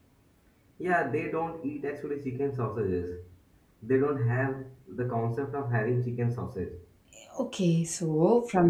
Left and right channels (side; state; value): both; identical; correlation 1.00